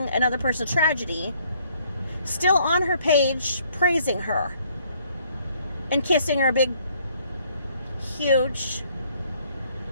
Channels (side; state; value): both; inverted; correlation -0.64